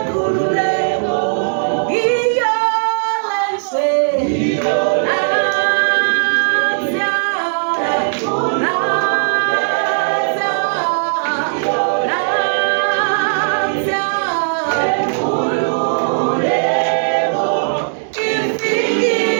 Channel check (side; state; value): left; silent; digital silence